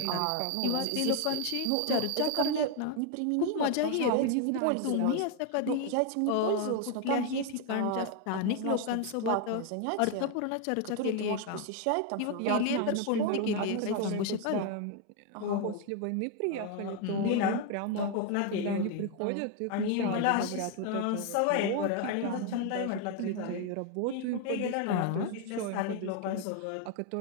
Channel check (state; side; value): different; both; correlation 0.01